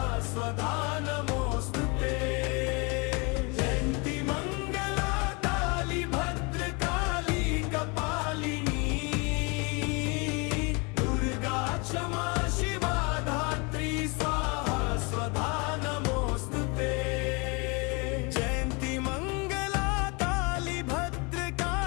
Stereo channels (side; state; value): right; quieter; 30.0 dB